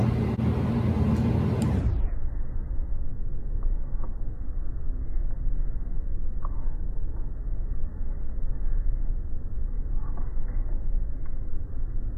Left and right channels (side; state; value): both; identical; correlation 1.00